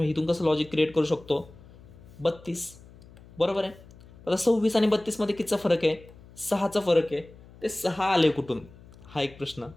इथून कसं लॉजिक क्रिएट करू शकतो, 32, बरोबर आहे. आता 26 आणि 32मध्ये कितीचा फरक आहे, 6चा फरक आहे. ते 6 आले कुठून, हा एक प्रश्न,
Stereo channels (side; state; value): left; noise; hum, 22 dB below the sound